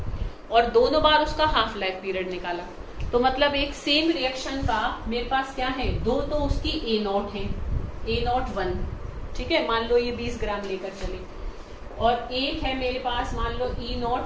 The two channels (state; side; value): identical; both; correlation 1.00